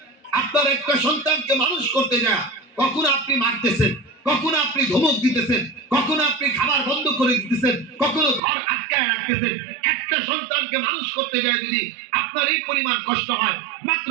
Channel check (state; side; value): drops out; left; at 8.4 s